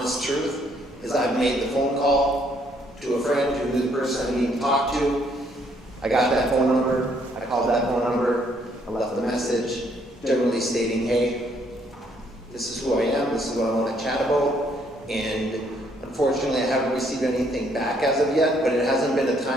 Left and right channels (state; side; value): normal; both; correlation 0.68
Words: truth, is I've made the phone call to a friend who knew the person I need to talk to. I got that phone number, I called that phone number, I left a message, generally stating, hey, this is who I am, this is what I want to chat about, and unfortunately I haven't received anything back as of yet, but it hasn't been a